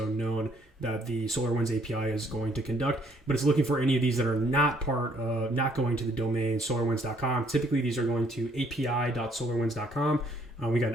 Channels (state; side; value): normal; both; correlation 0.65